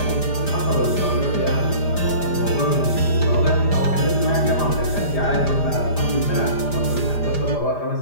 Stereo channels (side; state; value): right; late; 5.0 ms